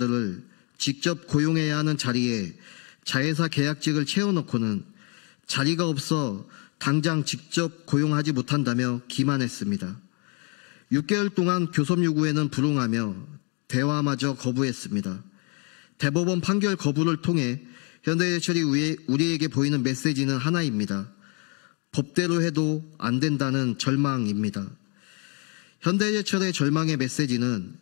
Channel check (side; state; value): right; quieter; 35.2 dB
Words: 직접 고용해야 하는 자리에 자회사 계약직을 채워놓고는 자리가 없어 당장 직접 고용하지 못한다며 기만했습니다. 6개월 동안 교섭 요구에는 불응하며 대화마저 거부했습니다. 대법원 판결 거부를 통해 현대제철이 우리에게 보이는 메시지는 하나입니다. 법대로 해도 안 된다는 절망입니다. 현대제철의 절망의 메시지는